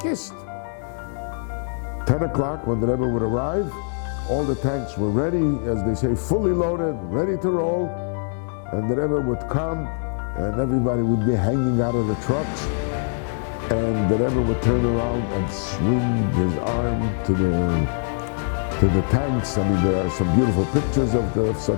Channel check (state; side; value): silent; right; digital silence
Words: 10 o'clock when the Rebbe would arrive, all the tanks were ready, as they say, fully loaded, ready to roll. And the Rebbe would come, and everybody would be hanging out of the trucks. And the Rebbe would turn around and swing his arm to the tanks. I mean, there are some beautiful pictures of